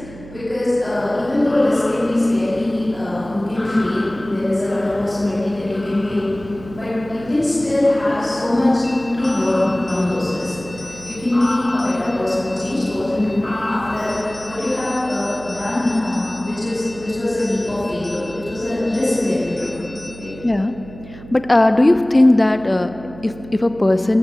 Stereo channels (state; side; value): noise; right; hum, 17 dB below the sound